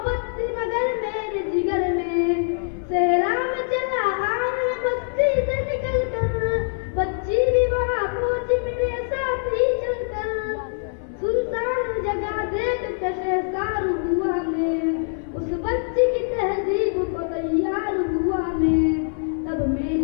थी मगर मेरे जिगर में। सहरा में चला आग में बस्ती से निकल कर, बच्ची भी वहाँ पहुंची मेरे साथ ही चलकर। सुनसान जगह देख के शहसार हुआ मैं, उस बच्ची की तहजीब को तैयार हुआ मैं। तब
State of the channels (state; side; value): silent; right; digital silence